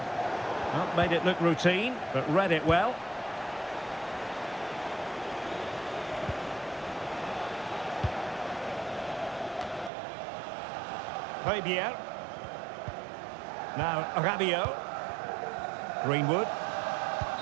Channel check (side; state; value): left; drops out; at 9.9 s